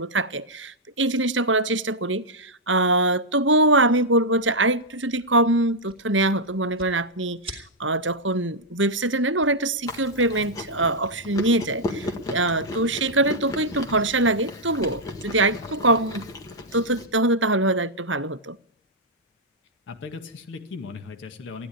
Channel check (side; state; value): both; normal; correlation -0.05